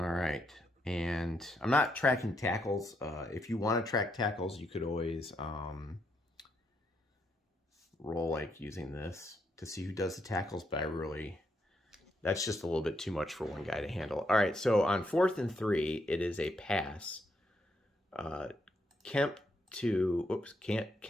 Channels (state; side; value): normal; both; correlation 0.77